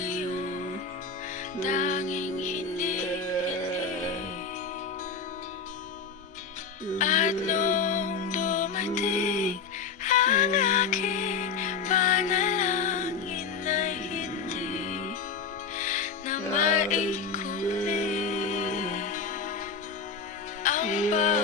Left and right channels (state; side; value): quieter; right; 5.3 dB